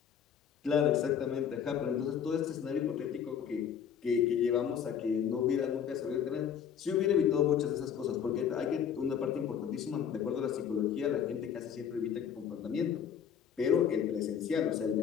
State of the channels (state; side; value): quieter; right; 8.2 dB